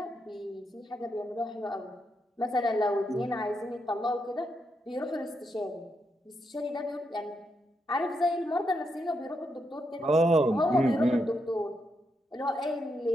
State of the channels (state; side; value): normal; both; correlation 0.82